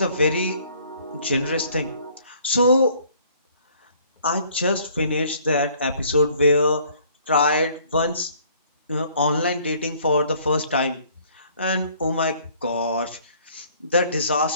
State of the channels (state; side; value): inverted; both; correlation -0.59